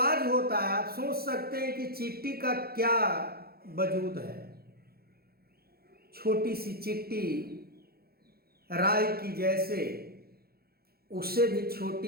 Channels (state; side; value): late; left; 0.45 ms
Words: होता है, आप सोच सकते हैं कि चींटी का क्या वजूद है। छोटी सी चींटी राई की जैसे, उससे भी